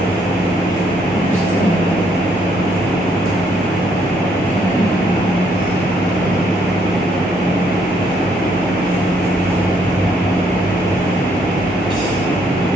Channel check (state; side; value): normal; both; correlation 0.70